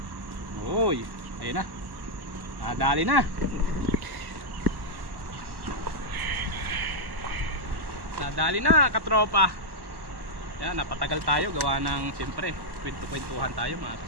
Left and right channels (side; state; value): left; late; 1.1 ms